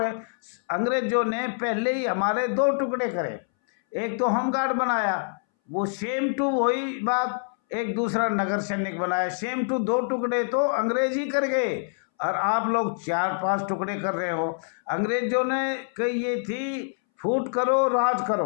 अंग्रेजों ने पहले ही हमारे 2 टुकड़े करे, एक तो होमगार्ड बनाया, वो सेम टू वही बात, एक दूसरा नगर सैनिक बनाया, सेम टू 2 टुकड़े तो अंग्रेज ही कर गए, और आप लोग 4-5 टुकड़े कर रहे हो। अंग्रेजों ने कही ये थी, फूट करो राज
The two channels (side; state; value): right; silent; 61 dB below the other